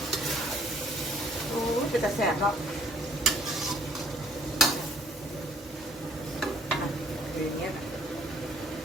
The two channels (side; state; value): both; normal; correlation 0.60